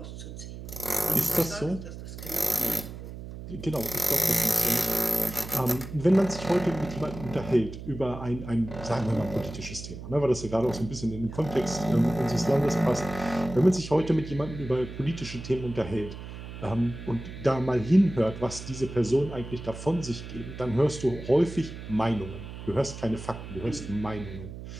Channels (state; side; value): noise; right; hum, 11 dB below the sound